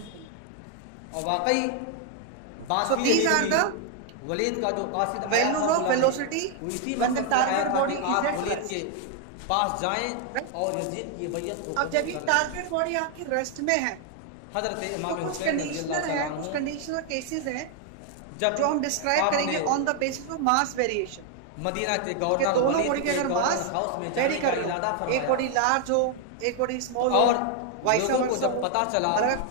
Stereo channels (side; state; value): both; different; correlation 0.00